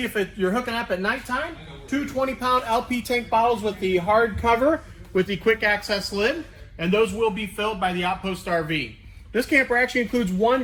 if you're hooking up at nighttime. Two 20-pound LP tank bottles with the hard cover with the quick access lid, and those will be filled by the Outpost RV. This camper actually includes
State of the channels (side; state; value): both; identical; correlation 1.00